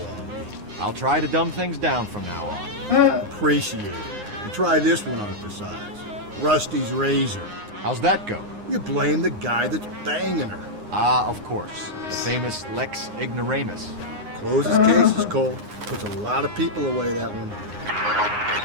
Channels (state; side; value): late; left; 9.7 ms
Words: me. I'll try to dumb things down from now on. Appreciate it. And try this one on for size. Rusty's razor. How's that go? You blame the guy that's banging her. Ah, of course. The famous Lex Ignoramus. Closes cases, Cole. Puts a lot of people away, that one.